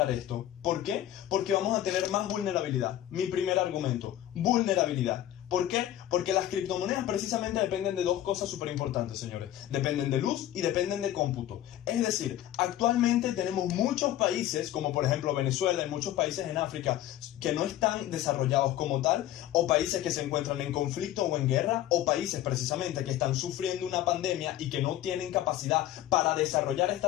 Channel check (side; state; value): right; quieter; 13.0 dB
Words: esto. ¿Por qué? Porque vamos a tener más vulnerabilidad. Mi primer argumento, vulnerabilidad. ¿Por qué? Porque las criptomonedas precisamente dependen de 2 cosas súper importantes, señores. Dependen de luz y dependen de cómputo. Es decir, actualmente tenemos muchos países, como por ejemplo Venezuela y muchos países en África, que no están desarrollados como tal, o países que se encuentran en conflicto o en guerra, o países precisamente que están sufriendo una pandemia y que no tienen capacidad para desarrollar